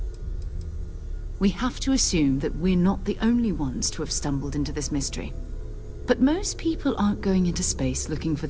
We have to assume that we're not the only ones to have stumbled into this mystery. But most people aren't going into space looking for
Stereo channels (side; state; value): both; identical; correlation 1.00